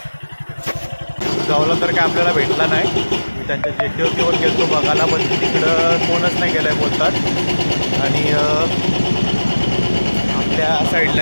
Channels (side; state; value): both; inverted; correlation -1.00